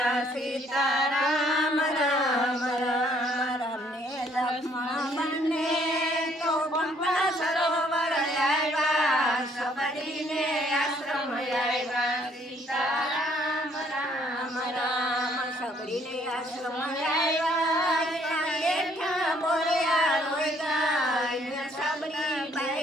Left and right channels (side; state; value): both; normal; correlation 0.64